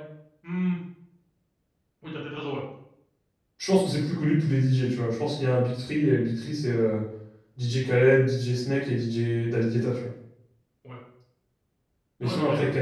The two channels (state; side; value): identical; both; correlation 1.00